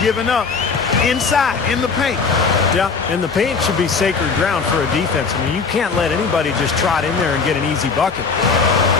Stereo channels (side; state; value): right; quieter; 5.1 dB